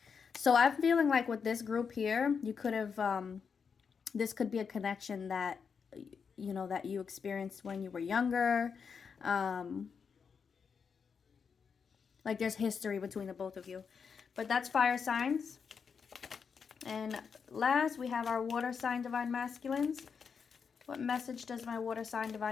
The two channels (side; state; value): right; quieter; 6.1 dB